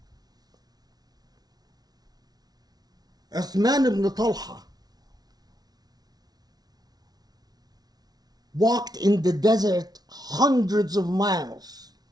Uthman ibn Talha walked in the desert hundreds of miles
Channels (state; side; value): late; left; 0.19 ms